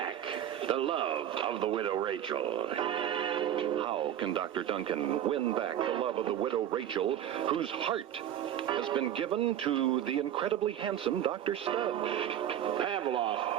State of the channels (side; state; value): left; quieter; 10.6 dB